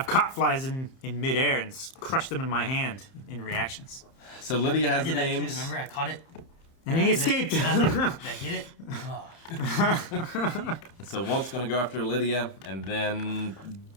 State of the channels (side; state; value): right; late; 30 ms